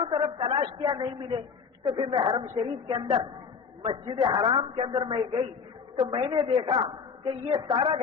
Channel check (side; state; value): right; quieter; 6.0 dB